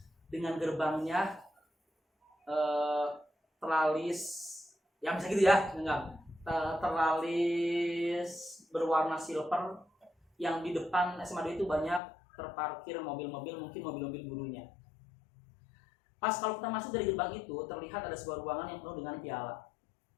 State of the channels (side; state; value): right; drops out; at 12.0 s